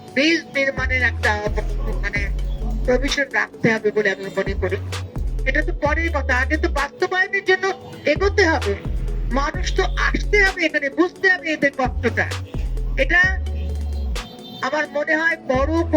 ব্রিজ নির্মাণের একটা মানে প্রভিশন রাখতে হবে বলে আমি মনে করি। এটা তো পরের কথা, আগে তো বাস্তবায়নের জন্য এগোতে হবে। মানুষ তো আসতে হবে এখানে, বুঝতে হবে এদের কষ্টটা। এটা আমার মনে হয় বড়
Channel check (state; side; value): identical; both; correlation 1.00